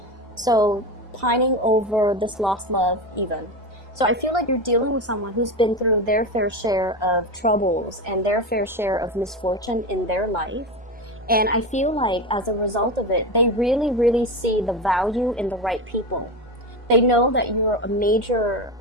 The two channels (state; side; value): normal; both; correlation 0.20